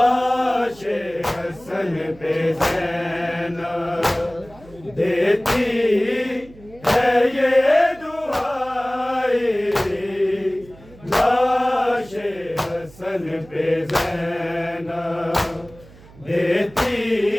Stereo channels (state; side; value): noise; right; hum, 22 dB below the sound